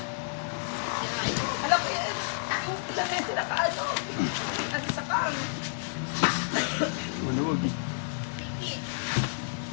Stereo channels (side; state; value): right; silent; digital silence